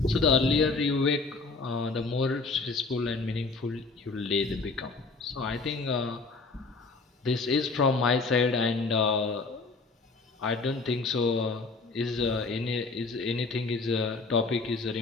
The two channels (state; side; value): quieter; right; 4.0 dB